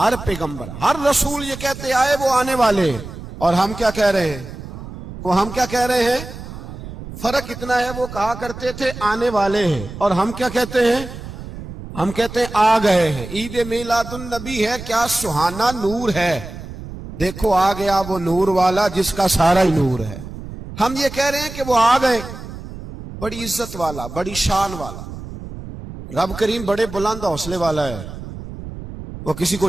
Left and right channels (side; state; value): right; noise; rumble, 12 dB below the sound